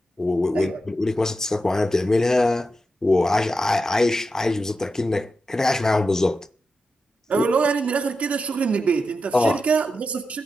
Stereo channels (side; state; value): both; normal; correlation 0.89